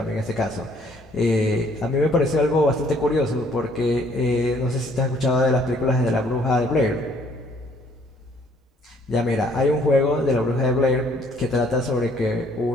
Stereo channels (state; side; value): normal; both; correlation 0.62